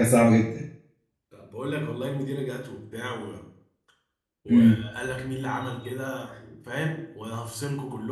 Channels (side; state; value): both; identical; correlation 1.00